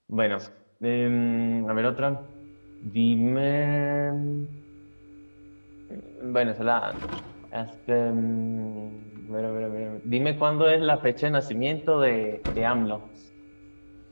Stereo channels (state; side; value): inverted; both; correlation -1.00